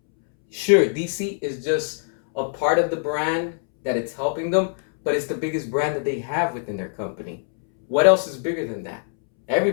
Sure, DC is just a part of the brand that it's helping them, but it's the biggest brand that they have within their company. What else is bigger than that?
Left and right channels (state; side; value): silent; right; 63 dB below the other